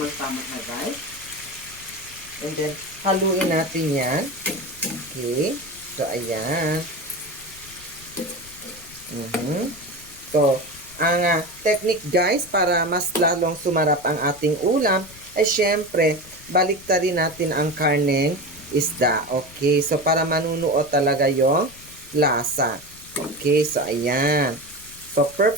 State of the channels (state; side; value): noise; left; rumble, 21 dB below the sound